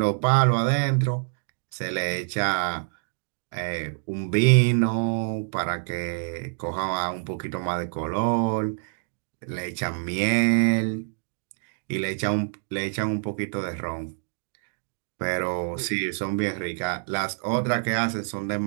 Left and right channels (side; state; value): left; silent; 61 dB below the other